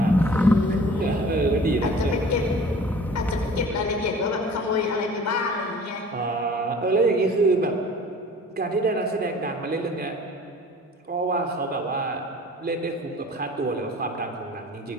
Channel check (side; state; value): both; normal; correlation 0.46